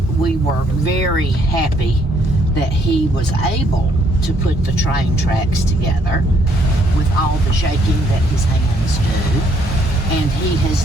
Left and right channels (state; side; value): normal; both; correlation 0.68